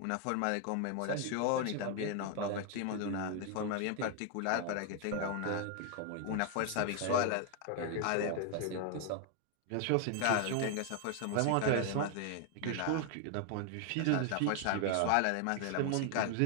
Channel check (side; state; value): both; different; correlation 0.00